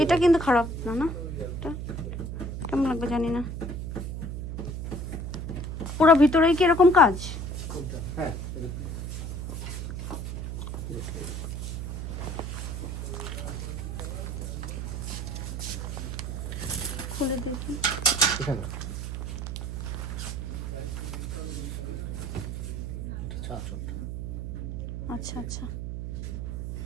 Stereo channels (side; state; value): right; noise; hum, 4 dB below the sound